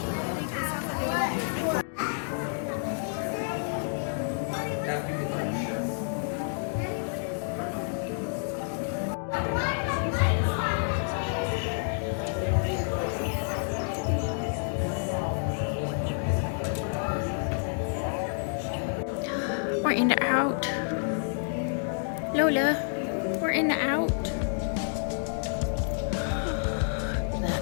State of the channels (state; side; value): silent; right; digital silence